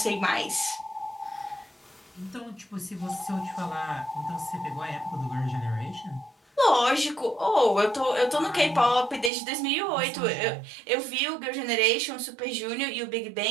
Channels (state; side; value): drops out; left; at 9.3 s